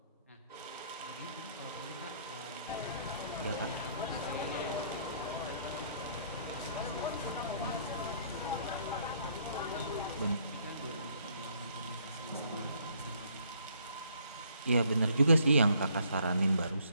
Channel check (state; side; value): inverted; both; correlation -0.65